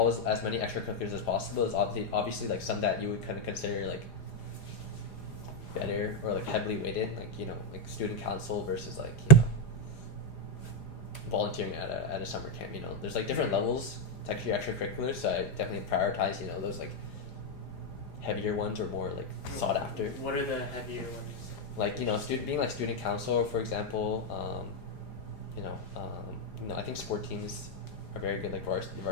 with as many extracurriculars as possible. Is obviously like some that you would kind of consider like better or like heavily weighted, like like student council versus like volunteering at a summer camp. There's like different levels to actually extracurriculars. So I definitely prioritize those like heavier ones or more like sought after. What are the heavier ones? Like being like student council, for example. I think sport teams are very good, like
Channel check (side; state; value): right; late; 4.9 ms